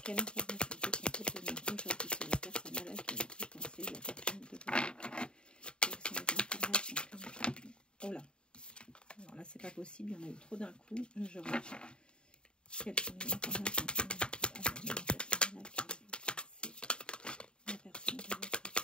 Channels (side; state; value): right; late; 0.051 ms